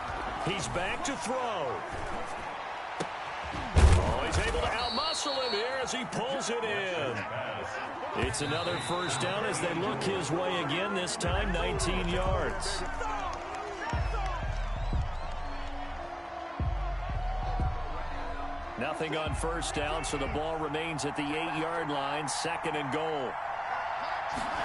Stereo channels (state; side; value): identical; both; correlation 1.00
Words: He's back to throw. Oh, he's able to outmuscle him here as he pulls it in. It's another first down as they look his way again, this time 19 yards. Nothing on first down, so the ball remains at the 8-yard line, 2nd and goal.